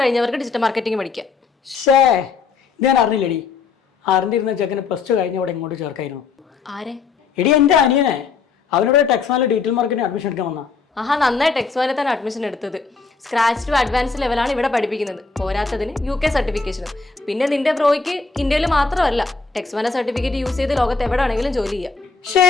കഴിഞ്ഞവർക്ക് ഡിജിറ്റൽ മാർക്കറ്റിംഗ് പഠിക്കാം. ഷേ, ഞാൻ അറിഞ്ഞില്ലടി. അറിഞ്ഞിരുന്ന ചെക്കന് +2 കഴിഞ്ഞ അവിടെ ഇങ്ങോട്ട് ചേർക്കായിരുന്നു. ആരെ? എടി എൻ്റെ അനിയനെ. അവനോട് ടെക്സ്മാനിൽ ഡീറ്റെയിൽ മാർക്കറ്റിംഗ് അഡ്മിഷൻ എടുക്കാൻ വന്ന. ആഹാ, നന്നായി ടെക്സ്മാനിൽ തന്നെ അഡ്മിഷൻ എടുത്തത്. സ്ക്രാച്ച് ടു അഡ്വാൻസ് ലെവലാണ് ഇവിടെ പഠിപ്പിക്കുന്നത്. പോരാത്തതിന് UK സർട്ടിഫിക്കേഷനും. പിന്നെ നിന്റെ ബ്രോയ്ക്ക് ഇന്ത്യയിൽ മാത്രമല്ല, ടെക്സ്മാന സർട്ടിഫിക്കറ്റ് യൂസ് ചെയ്ത് ലോകത്ത് എവിടെ ആണെങ്കിലും ജോലി ചെയ്യാം.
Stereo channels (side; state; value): right; quieter; 4.8 dB